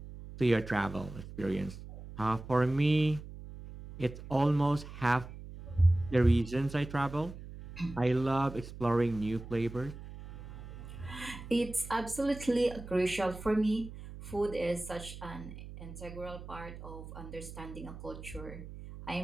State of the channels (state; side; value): noise; right; hum, 13 dB below the sound